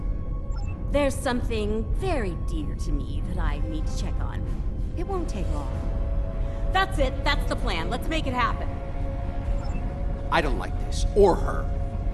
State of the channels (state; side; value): identical; both; correlation 1.00